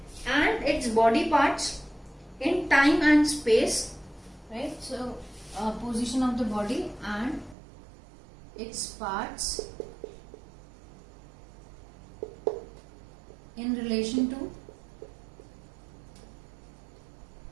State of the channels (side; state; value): left; drops out; at 7.6 s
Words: and its body parts in time and space, right? So position of the body and its parts in relation to